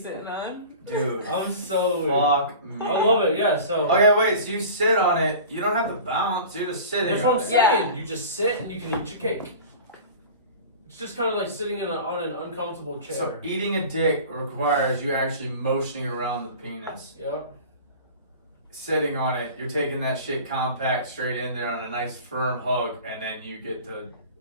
sitting on. Dude. I'm so. Fuck me. I love it. Yeah. So. Okay, wait, so you sit on it. You don't have to bounce. You're just sitting That's what on I'm it. saying. Yeah. You just sit and you can eat your cake. It's just kind of like sitting on an uncomfortable chair. So eating a dick requires you actually motioning around the penis. Yep. Sitting on it, you're taking that shit compact straight in there on a nice firm hug, and then you get to.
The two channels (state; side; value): inverted; both; correlation -0.38